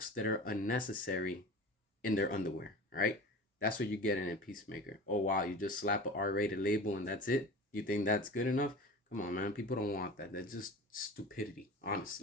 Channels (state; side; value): normal; both; correlation 0.36